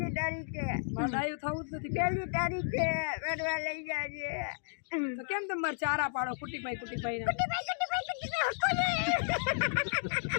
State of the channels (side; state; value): right; silent; digital silence